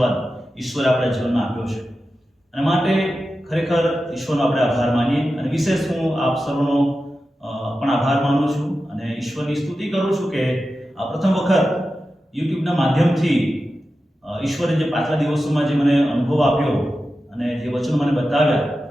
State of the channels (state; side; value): normal; both; correlation 0.92